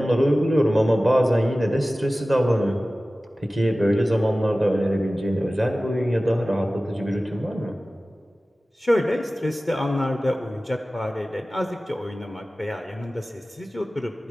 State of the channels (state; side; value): normal; both; correlation 0.96